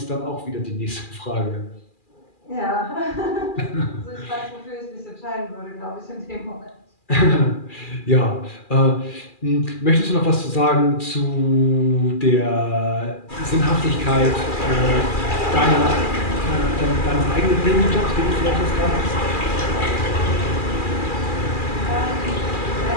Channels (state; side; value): late; right; 2.4 ms